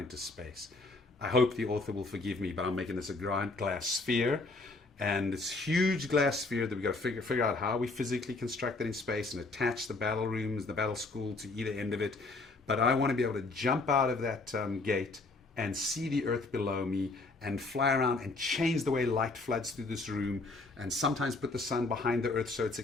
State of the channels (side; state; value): right; quieter; 3.4 dB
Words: space? I hope the author will forgive me, but I'm making this a giant glass sphere. And this huge glass sphere that we've got to figure out how we physically construct it in space and attach the battle rooms, the battle school to either end of it. But I want to be able to jump out of that gate and see the earth below me and fly around and change the way light floods through this room, and sometimes put the sun behind the earth so it's